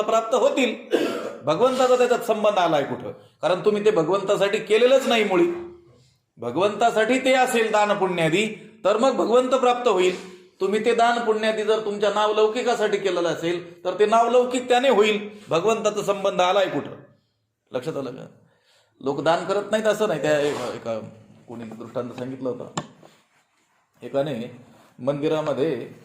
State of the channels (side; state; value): both; identical; correlation 1.00